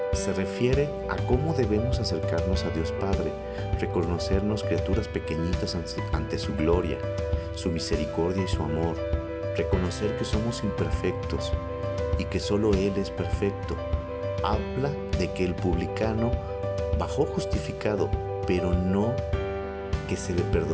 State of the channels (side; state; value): both; identical; correlation 1.00